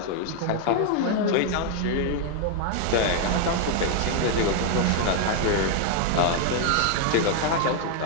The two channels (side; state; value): both; different; correlation 0.00